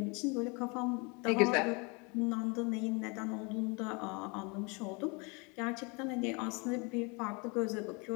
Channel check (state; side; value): quieter; right; 30.7 dB